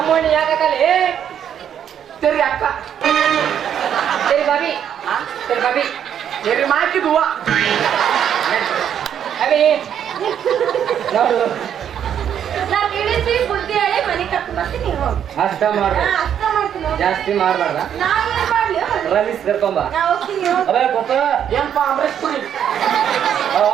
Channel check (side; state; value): left; quieter; 9.2 dB